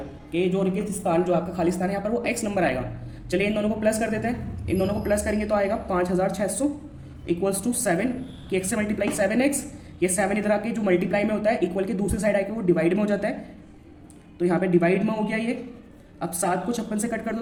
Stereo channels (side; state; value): both; identical; correlation 1.00